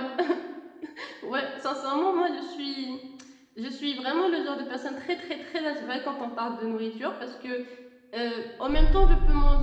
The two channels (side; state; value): both; identical; correlation 1.00